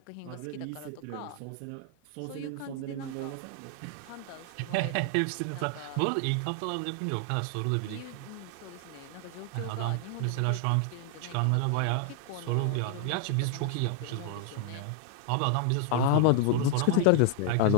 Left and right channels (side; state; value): both; different; correlation 0.00